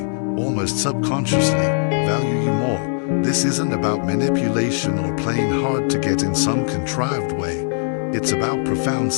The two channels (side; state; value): right; silent; 63 dB below the other